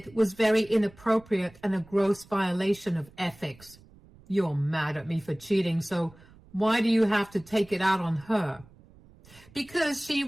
was very inappropriate and a gross violation of ethics." "You're mad at me for cheating, so why do you have to take it out on her?" "Because she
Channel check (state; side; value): noise; right; rumble, 25 dB below the sound